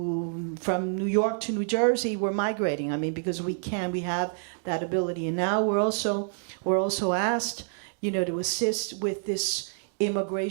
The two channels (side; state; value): left; silent; digital silence